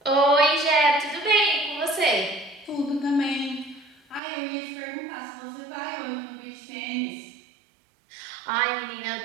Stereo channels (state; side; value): drops out; left; at 4.2 s